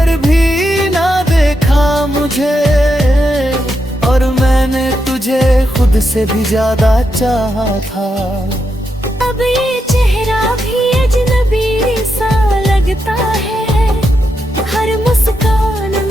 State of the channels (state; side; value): normal; both; correlation 0.84